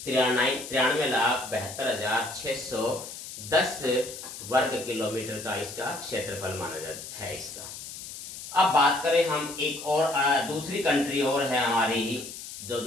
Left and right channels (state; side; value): noise; left; hiss, 11 dB below the sound